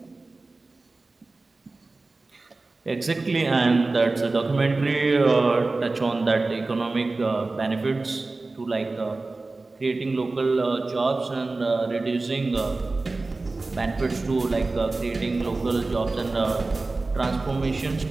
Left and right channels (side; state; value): left; quieter; 3.4 dB